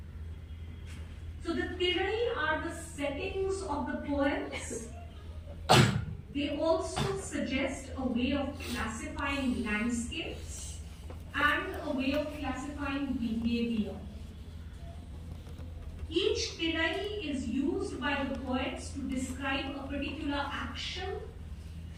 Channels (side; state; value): both; identical; correlation 1.00